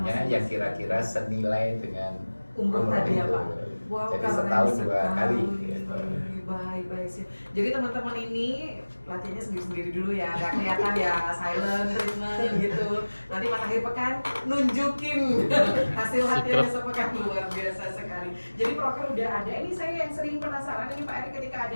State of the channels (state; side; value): inverted; both; correlation -1.00